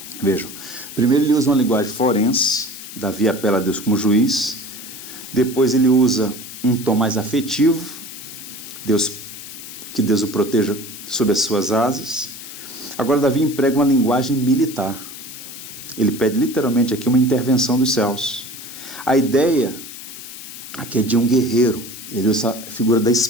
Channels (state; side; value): noise; left; hiss, 13 dB below the sound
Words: Vejam, primeiro ele usa uma linguagem forense, Davi apela a Deus como juiz. Depois ele usa um tom mais afetivo, que Deus o proteja sob as suas asas. Agora Davi emprega uma linguagem militar. Ele pede literalmente aqui uma intervenção dos céus. A ideia aqui é de um guerreiro. Ele usa a figura da